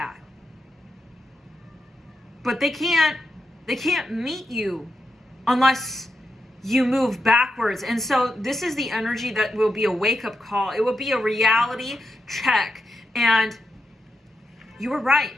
but they can't meet you unless you move backwards. And so this is the energy that will be a wake-up call. It will be a reality check. And you were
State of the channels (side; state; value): both; normal; correlation 0.85